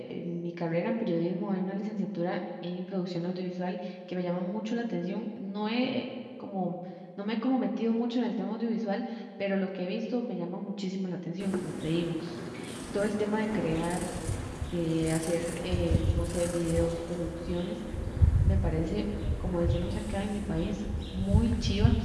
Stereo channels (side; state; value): both; identical; correlation 1.00